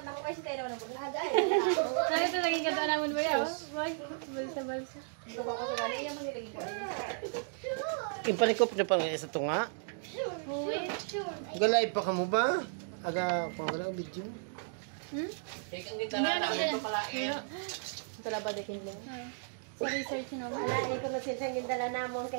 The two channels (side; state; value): left; silent; digital silence